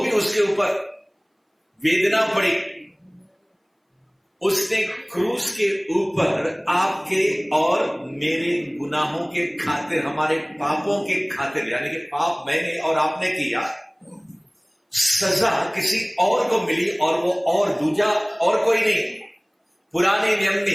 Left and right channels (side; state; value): both; identical; correlation 1.00